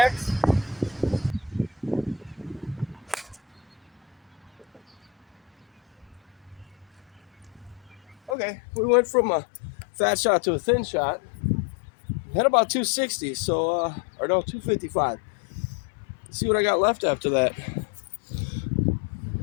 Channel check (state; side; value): drops out; right; at 8.3 s